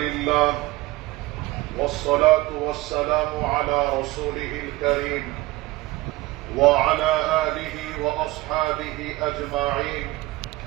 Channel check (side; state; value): left; quieter; 19.4 dB